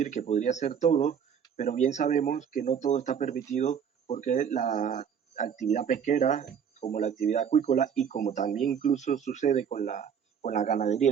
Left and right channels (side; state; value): left; quieter; 7.7 dB